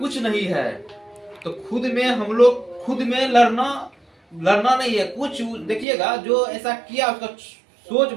नहीं है। तो खुद में हम लोग, खुद में लड़ना नहीं है। कुछ देखिएगा जो ऐसा किया उसका सोच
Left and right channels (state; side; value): drops out; left; at 5.9 s